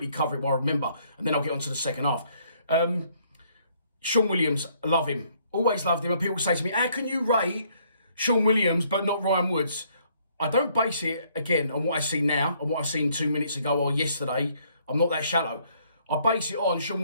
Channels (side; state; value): both; inverted; correlation -0.66